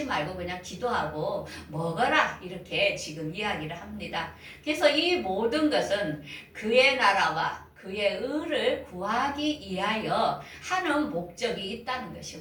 말고 그냥 기도하고 먹어라. 이렇게 지금 이야기를 합니다. 그래서 이 모든 것은 그의 나라와 그의 의를 구하기 위하여 하는 목적이 있다는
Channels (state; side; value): identical; both; correlation 1.00